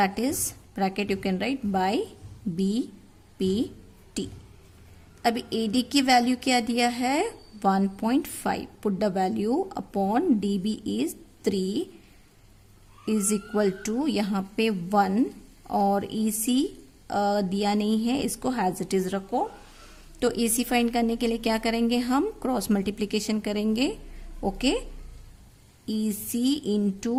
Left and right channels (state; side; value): identical; both; correlation 1.00